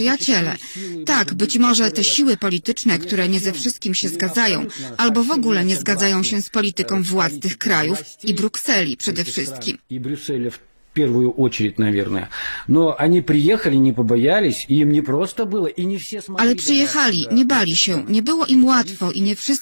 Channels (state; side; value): inverted; both; correlation -1.00